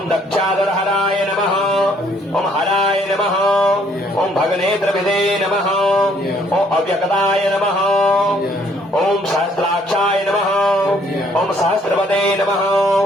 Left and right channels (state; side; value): normal; both; correlation 0.64